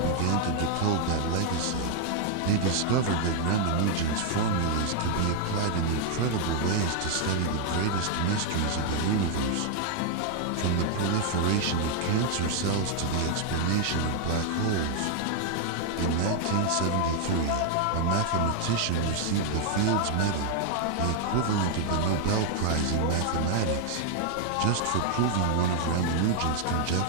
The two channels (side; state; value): both; different; correlation 0.00